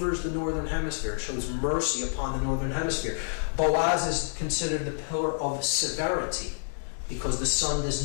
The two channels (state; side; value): silent; right; digital silence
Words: the northern hemisphere. It shows mercy upon the northern hemisphere. Boaz is considered the pillar of severity, because the sun